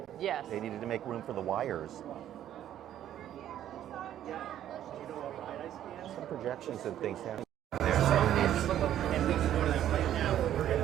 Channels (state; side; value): quieter; left; 11.4 dB